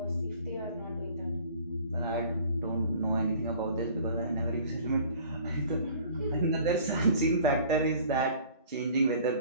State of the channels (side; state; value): both; inverted; correlation -0.50